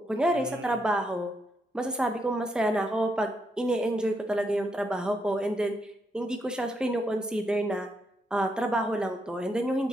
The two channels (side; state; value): both; normal; correlation 0.79